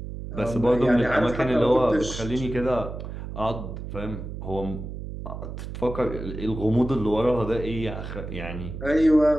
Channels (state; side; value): noise; right; hum, 8 dB below the sound